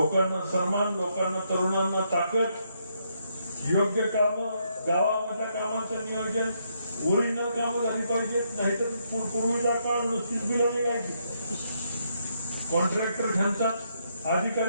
सन्मान, लोकांना तरुणांना ताकद, योग्य काम, गावामधल्या कामांचं नियोजन, ओरिजिनल कामं झाली पाहिजेत. नाहीतर पूर्वीचा काळ नुसतीच बिलं निघायची. कॉन्ट्रॅक्टर ह्यांचाच,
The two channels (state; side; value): inverted; both; correlation -0.76